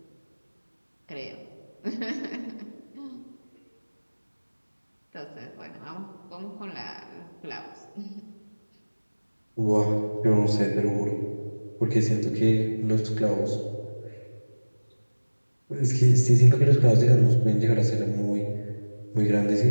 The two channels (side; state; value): both; inverted; correlation -1.00